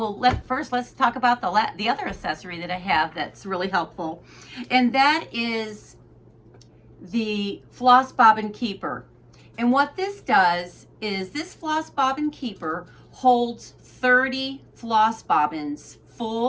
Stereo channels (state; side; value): identical; both; correlation 1.00